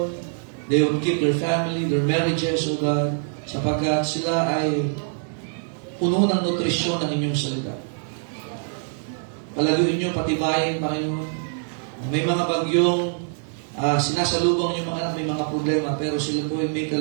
They would keep their family, their marriages, O God. Sapagkat sila ay puno ng nutrisyon ng inyong salita. Palaguin niyo, patibayin, Panginoon. May mga bagyong sinasalubong yung mga anak, may mga problema, pero sila po ay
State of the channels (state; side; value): silent; left; digital silence